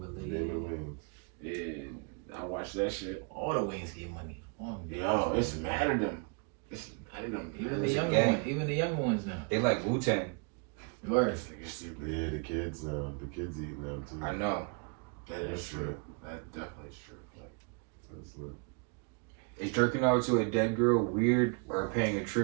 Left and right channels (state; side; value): quieter; left; 35.8 dB